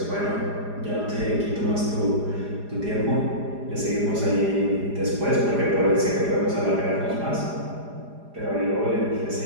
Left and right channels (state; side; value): late; left; 4.9 ms